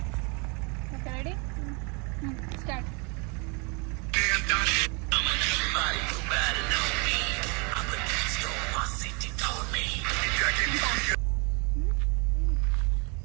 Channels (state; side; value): quieter; left; 32.4 dB